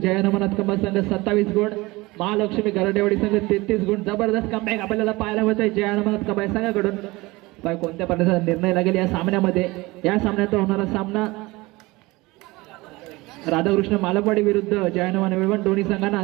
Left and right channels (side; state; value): left; quieter; 21.8 dB